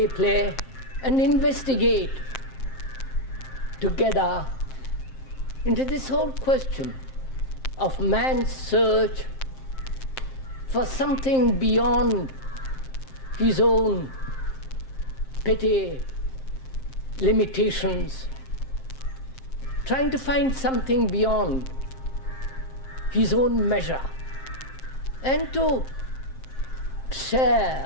and investigate together into this whole question of man's search for something beyond his own petty limitations, trying to find something beyond his own measure, and to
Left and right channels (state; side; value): late; right; 7.6 ms